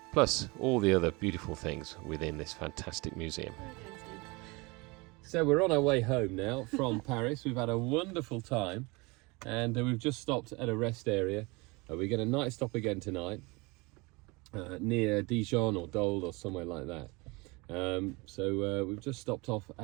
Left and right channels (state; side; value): quieter; left; 26.0 dB